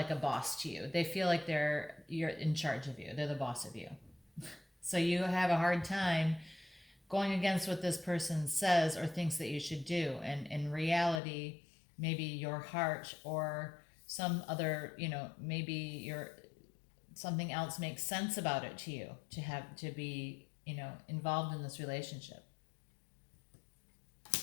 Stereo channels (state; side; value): drops out; right; at 11.2 s